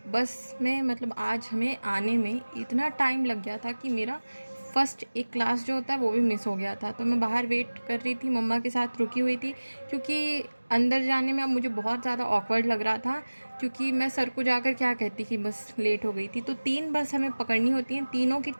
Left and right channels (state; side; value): inverted; both; correlation -1.00